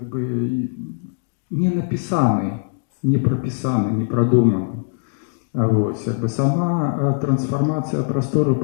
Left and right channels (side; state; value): right; silent; digital silence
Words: бы, не напісаны, не прапісаны, не прадуманы. Вось, як бы, сама трансфармацыя прастору